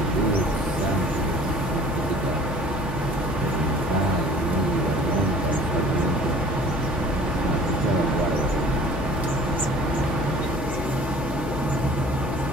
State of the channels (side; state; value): left; noise; hum, 7 dB below the sound